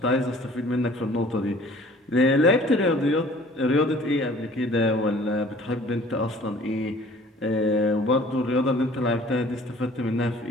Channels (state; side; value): normal; both; correlation 0.51